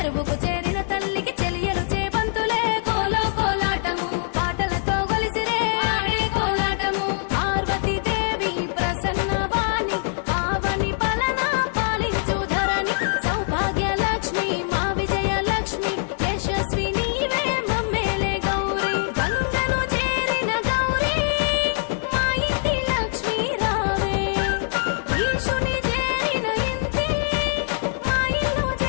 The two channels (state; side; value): silent; right; 63 dB below the other